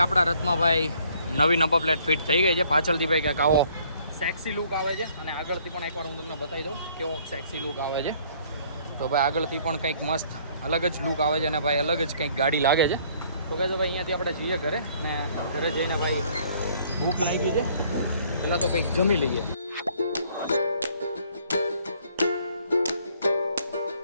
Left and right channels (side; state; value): both; inverted; correlation -0.61